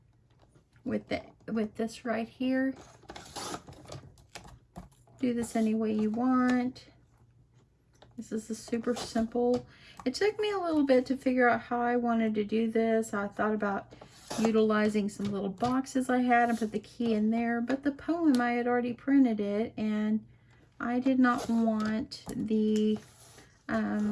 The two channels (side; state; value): both; identical; correlation 1.00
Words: with with this right here. Do this any way you want. This is a super simple. It took me a little bit to figure out how I wanted to do this. I thought about utilizing some little boxes I had and put the key in there, but the poem, I had already printed it, and I did not want the, I